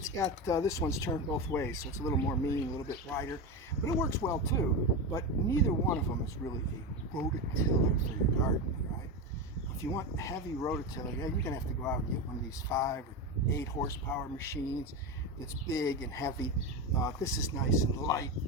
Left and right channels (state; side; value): normal; both; correlation 0.18